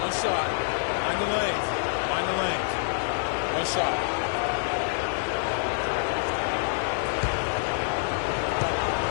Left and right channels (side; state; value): right; silent; digital silence